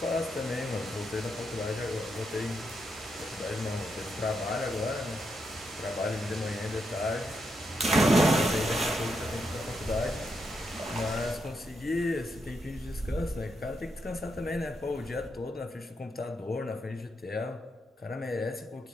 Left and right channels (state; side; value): normal; both; correlation 0.81